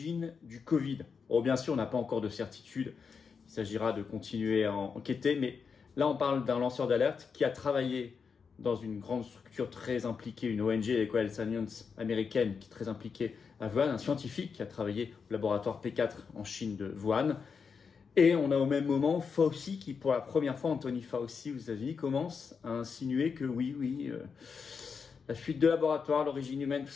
du Covid. Bon, bien sûr, on n'a pas encore de certitude. Il s'agira de continuer à enquêter. Mais là, on parle d'un lanceur d'alerte qui a travaillé dans une grande structure très impliquée, une ONG, l'Eco Health Alliance américaine, qui est très impliquée à Wuhan, un scientifique qui a travaillé au laboratoire P4 en Chine de Wuhan. Et on a au même moment Fauci qui, pour la première fois, Anthony Fauci aux États-Unis, commence à insinuer que la fuite de laboratoire, l'origine humaine, tout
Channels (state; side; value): quieter; right; 5.8 dB